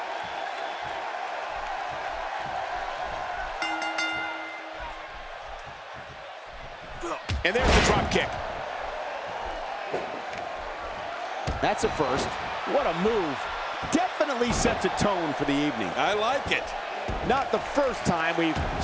And there's the drop kick. That's a first. What a move. Definitely sets a tone for the evening. I like it. Not the first time we've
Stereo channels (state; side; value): identical; both; correlation 1.00